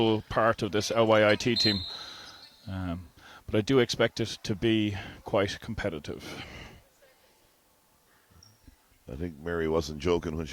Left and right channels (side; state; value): both; identical; correlation 1.00